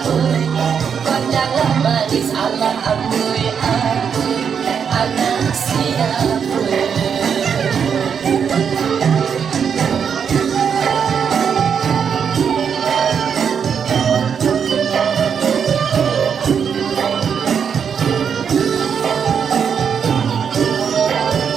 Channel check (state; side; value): quieter; left; 7.1 dB